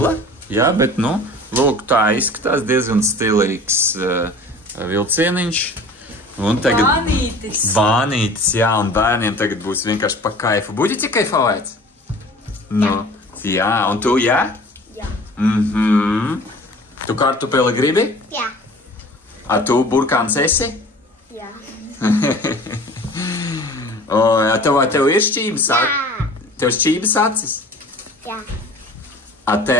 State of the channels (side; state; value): both; normal; correlation 0.44